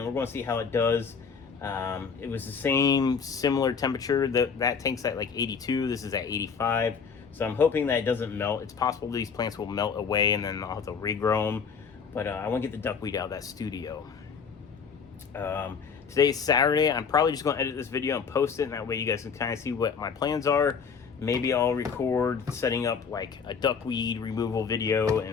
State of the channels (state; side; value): quieter; right; 6.0 dB